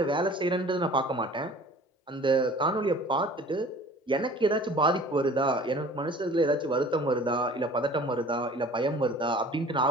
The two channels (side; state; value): both; normal; correlation 0.47